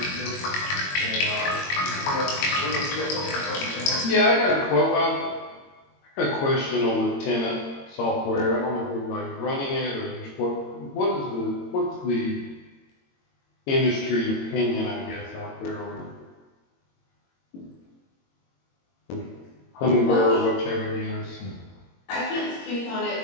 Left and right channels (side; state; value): right; late; 22 ms